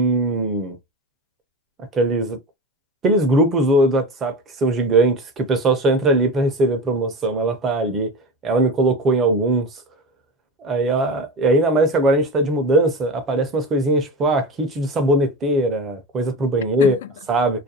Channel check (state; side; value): normal; both; correlation 0.25